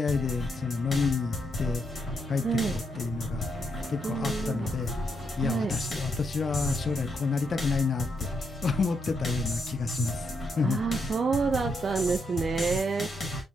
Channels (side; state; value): both; normal; correlation 0.79